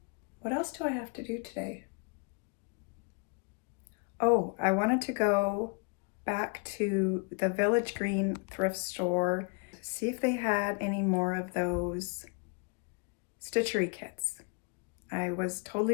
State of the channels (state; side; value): quieter; right; 35.1 dB